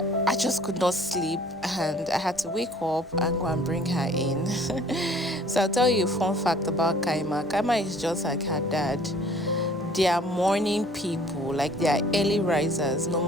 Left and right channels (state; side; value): normal; both; correlation 0.54